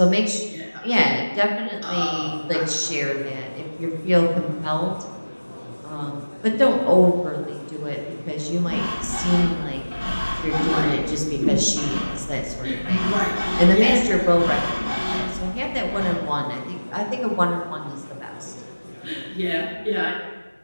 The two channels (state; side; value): inverted; both; correlation -1.00